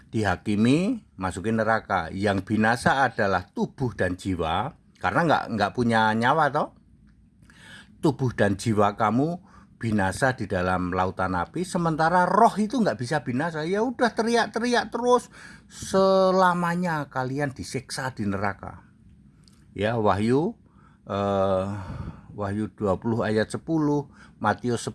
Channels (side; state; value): both; identical; correlation 1.00